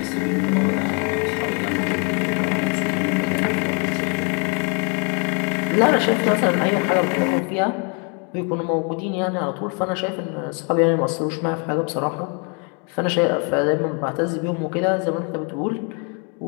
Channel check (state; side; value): quieter; right; 36.0 dB